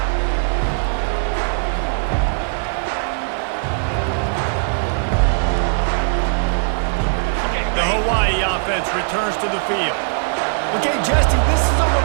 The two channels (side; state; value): left; silent; 61 dB below the other